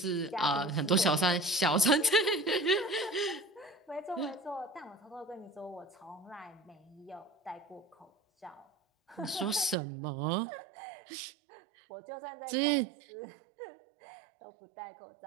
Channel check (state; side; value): drops out; left; at 9.8 s